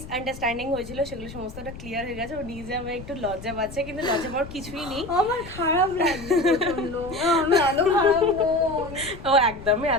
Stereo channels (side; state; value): left; noise; rumble, 14 dB below the sound